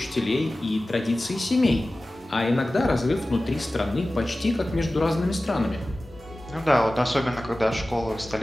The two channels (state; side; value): normal; both; correlation 0.96